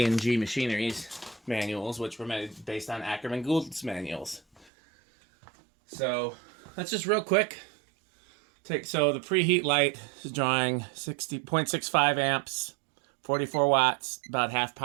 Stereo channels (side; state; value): left; drops out; at 4.7 s